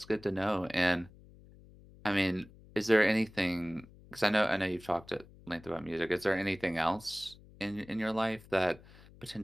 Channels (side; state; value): left; noise; hum, 22 dB below the sound